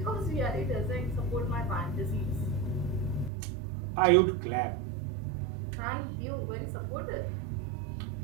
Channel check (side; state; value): left; drops out; at 3.3 s